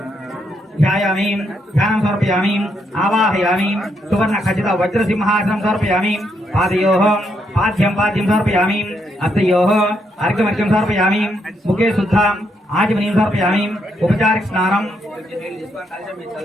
ध्यायामि ध्यानं समर्पयामि आवाहयामि सुवर्ण खचित वज्रसिंहासनं समर्पयामि पादयोः पाद्यं पाद्यं समर्पयामि हस्तयोः अर्घ्यमर्घ्यं समर्पयामि मुखे शुद्धम् आचमनीं समर्पयामि उपचारिक स्नानं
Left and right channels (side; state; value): both; normal; correlation 0.77